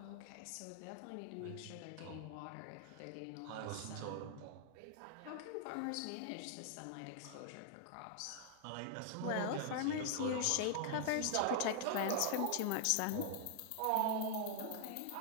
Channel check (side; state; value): both; different; correlation -0.01